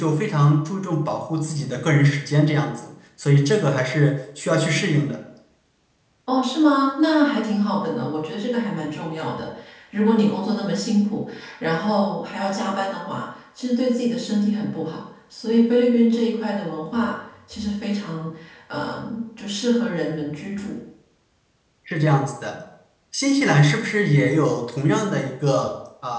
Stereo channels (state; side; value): identical; both; correlation 1.00